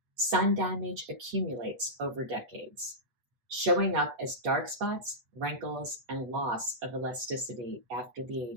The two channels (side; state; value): left; late; 8.3 ms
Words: Sun damage accumulates over decades, showing up as dark spots, wrinkles, and loss of elasticity after the